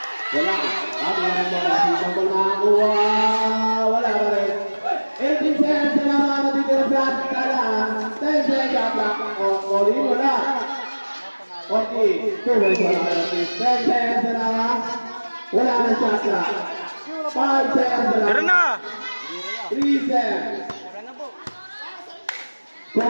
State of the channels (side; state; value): both; inverted; correlation -1.00